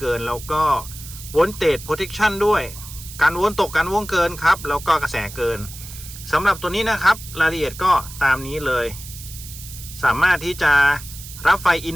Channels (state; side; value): noise; right; hiss, 14 dB below the sound